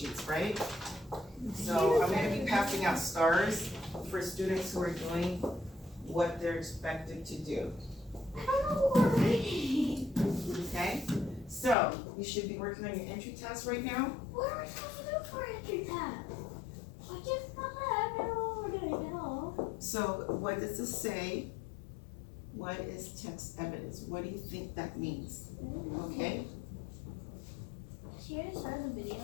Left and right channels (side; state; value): right; drops out; at 11.8 s